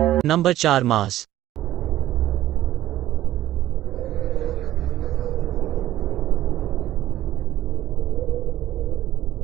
Number 4 Mars.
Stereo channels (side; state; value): left; quieter; 13.8 dB